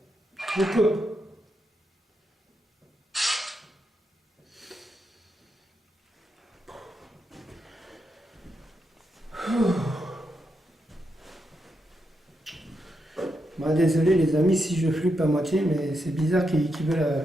Je coupe. Bah, désolé les amis si je flippe à moitié, mais c'est bizarre qu'ils veulent...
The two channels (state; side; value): normal; both; correlation 0.84